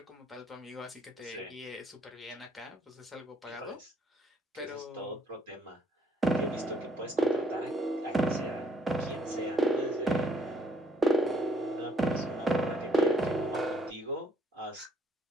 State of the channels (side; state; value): both; normal; correlation 0.66